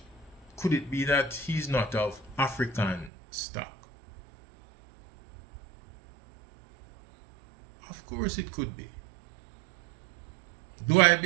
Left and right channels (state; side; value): drops out; left; at 3.1 s